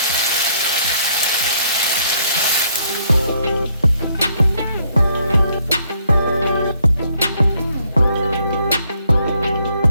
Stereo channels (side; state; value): both; inverted; correlation -0.70